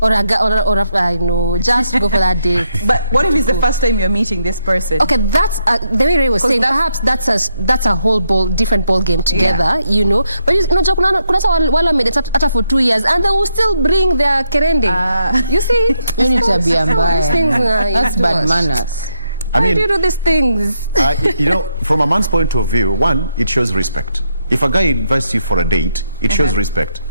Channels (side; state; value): both; inverted; correlation -0.79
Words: Or I know, just go for that date. But what if it's the first time you're meeting this person? Okay, that's the way Ray was saying. Perhaps that's a whole different ball game together, you know. But you know, kuna wala made it after for 2 years, and they will still bring their kerende. You see, you need to be That's bad manners. I mean, why do you do these things? You know, from a man's point of view, one, it shows respect. If a guy invites you for a date, it shows respect.